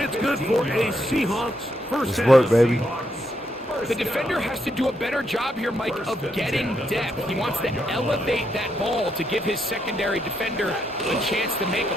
good for a Seahawks first Let's down. work, baby. The defender has to do a better job here, Mike, of getting depth. He wants to elevate that ball to give his secondary defender a chance to make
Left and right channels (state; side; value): normal; both; correlation 0.78